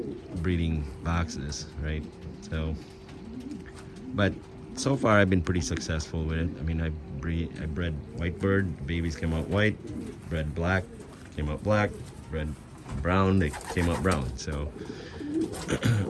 breeding boxes, right? So, but so far I've been pretty successful with it. I mean, I bred white bird, babies came out white, bred black, came out black, bred brown, they came out brown. So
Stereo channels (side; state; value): both; identical; correlation 1.00